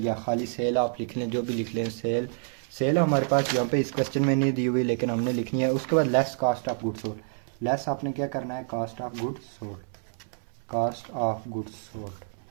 खाली सेल आप लिख लें, जो भी लिख लें। सेल, सेल हमारे पास यहाँ पे इस क्वेश्चन में नहीं दी हुई लेकिन हमने लिखनी है। उसके बाद less cost of goods sold. Less आपने क्या करना है, cost of goods sold, cost of goods sold,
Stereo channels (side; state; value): left; silent; 59 dB below the other